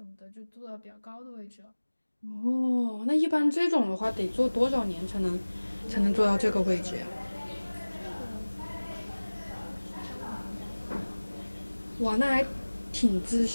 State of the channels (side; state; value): both; inverted; correlation -1.00